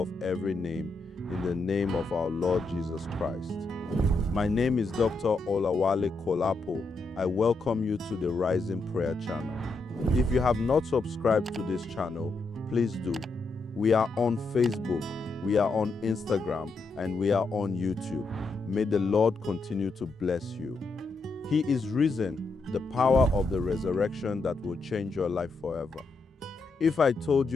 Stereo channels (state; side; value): quieter; right; 3.5 dB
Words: every name, in the name of our Lord Jesus Christ. My name is Dr. Olawale Kolapo. I welcome you to the Rising Prayer channel. If you have not subscribed to this channel, please do. We are on Facebook, we are on Instagram, and we are on YouTube. May the Lord continue to bless you. He is risen, the power of the resurrection that will change your life forever. If I told